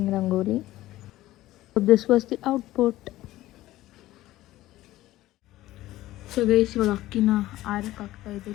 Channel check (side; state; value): right; quieter; 15.9 dB